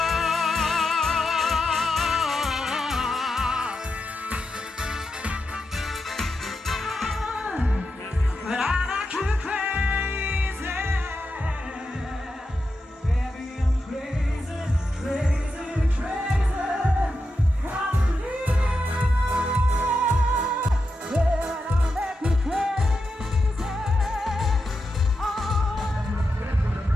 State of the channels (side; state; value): both; normal; correlation 0.88